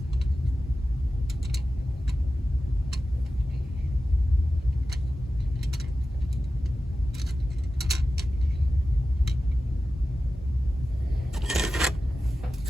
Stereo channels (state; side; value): normal; both; correlation 0.94